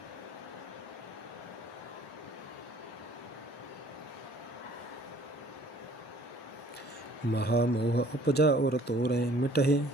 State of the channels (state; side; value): normal; both; correlation 0.55